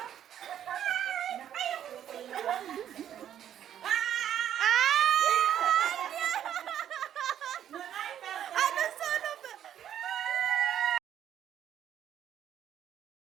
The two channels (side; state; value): left; quieter; 10.2 dB